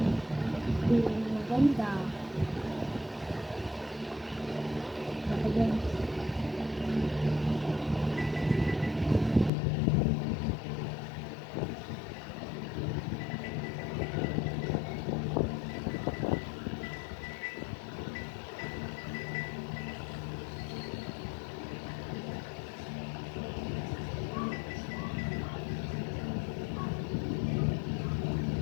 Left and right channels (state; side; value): drops out; right; at 9.5 s